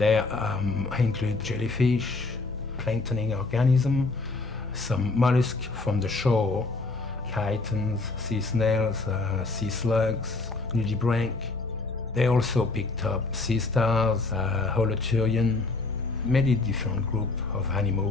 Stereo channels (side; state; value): right; quieter; 3.4 dB